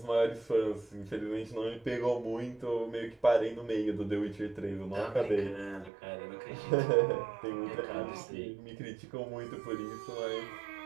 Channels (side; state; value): left; drops out; at 5.9 s